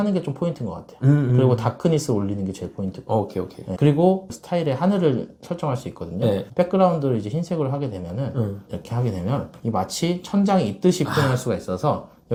게 좀 포인트인 것 같아요. 그리고 다크니스 올리는 게 제일 포인트고. 오케이. 네. 그리고 스타일의 하늘을 설정할 수 있거든요. 백그라운드를 이제 흰색으로 하게 되면은 이렇게 하게 되면 이 마치 천장이 있듯이 표현할 수가 있어서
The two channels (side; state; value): both; identical; correlation 1.00